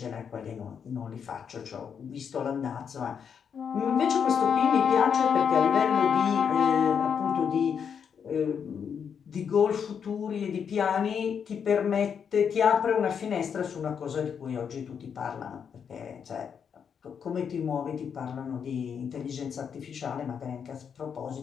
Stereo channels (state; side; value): quieter; right; 7.2 dB